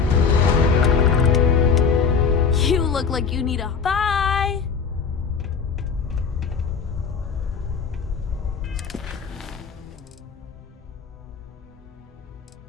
You look like you need a... Bye!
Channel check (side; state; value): right; quieter; 5.9 dB